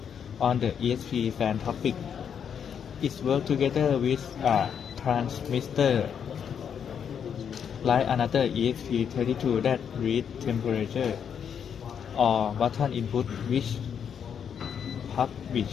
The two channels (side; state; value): right; quieter; 7.8 dB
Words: on the ESP fan topic. It works together with a transmitter like another ESP32 that reads temperature or button input which